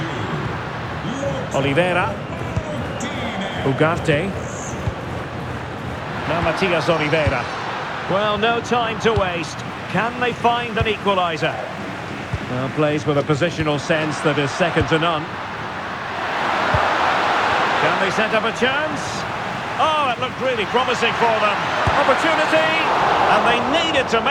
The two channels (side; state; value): both; identical; correlation 1.00